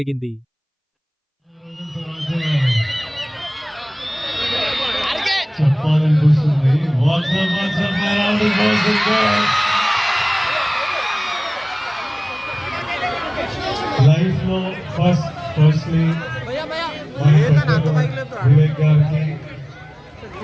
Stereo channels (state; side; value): identical; both; correlation 1.00